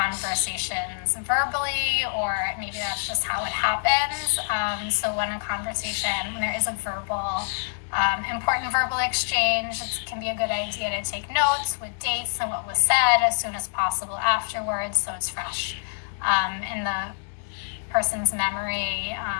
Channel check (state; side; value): silent; right; digital silence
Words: verbally, or maybe that's just how it happens. So when there is a important verbal exchange, it can be a good idea to take notes with dates and what was said as soon as possible afterwards, so it's fresh in the person's memory.